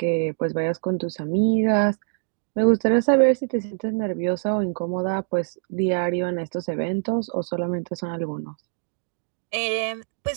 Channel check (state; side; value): silent; left; digital silence